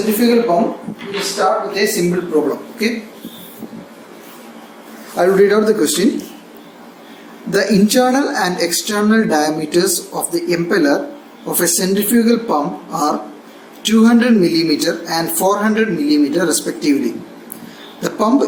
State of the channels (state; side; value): identical; both; correlation 1.00